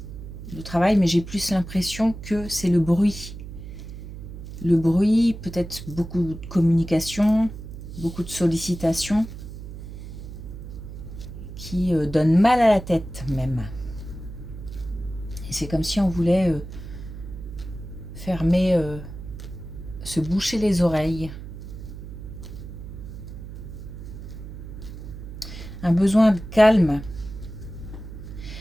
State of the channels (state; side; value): noise; right; hum, 11 dB below the sound